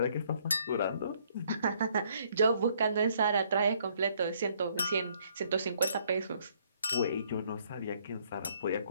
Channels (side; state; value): both; inverted; correlation -0.67